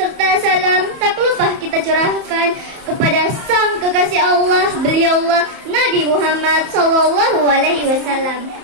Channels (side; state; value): left; late; 31 ms